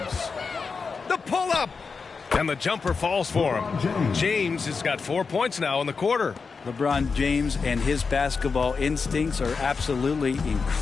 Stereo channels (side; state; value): right; quieter; 5.0 dB